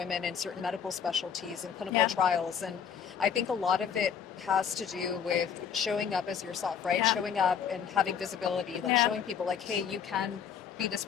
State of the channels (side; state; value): right; quieter; 7.6 dB